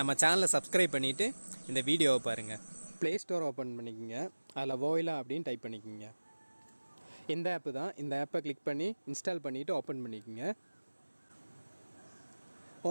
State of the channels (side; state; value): both; inverted; correlation -1.00